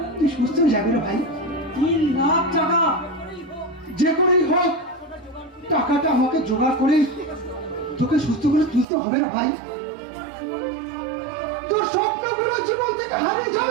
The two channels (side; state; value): left; drops out; at 8.8 s